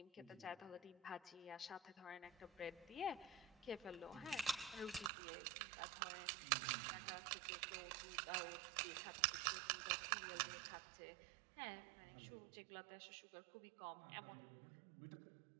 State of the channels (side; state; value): left; drops out; at 5.1 s